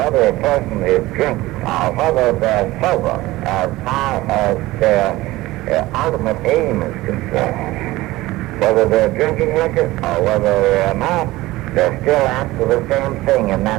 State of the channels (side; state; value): left; quieter; 18.4 dB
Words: a person is drinking or whether they're sober as far as their ultimate aim is concerned. Whether they're drinking liquor or whether they're not, they're still after the same thing, and